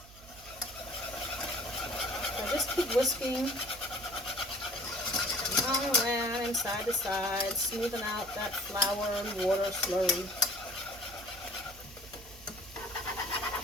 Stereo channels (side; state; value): right; noise; hum, 20 dB below the sound